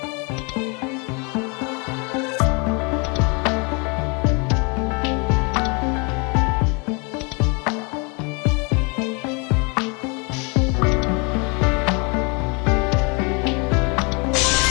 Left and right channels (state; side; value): quieter; right; 31.9 dB